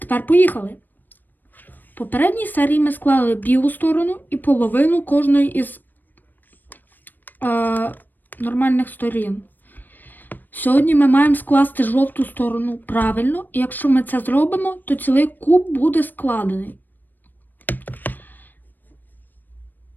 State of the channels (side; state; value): right; late; 0.090 ms